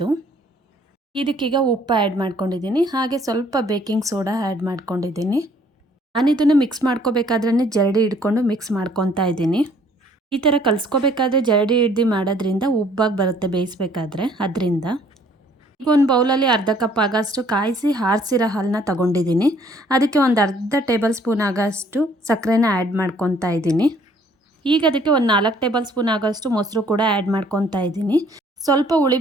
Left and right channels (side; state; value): both; normal; correlation 0.60